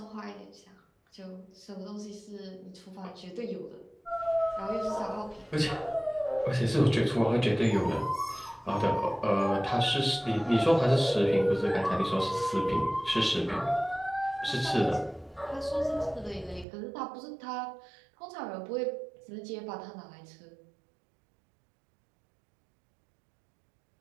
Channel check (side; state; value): left; drops out; at 16.7 s